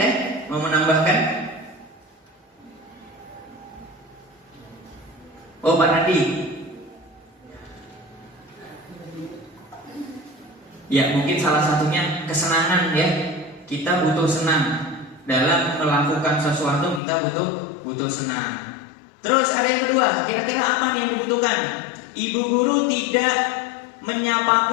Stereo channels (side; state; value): right; drops out; at 17.0 s